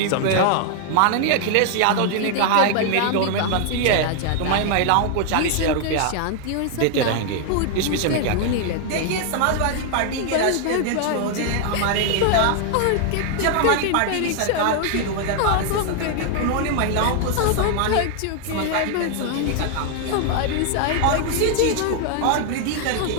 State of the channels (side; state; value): both; different; correlation 0.00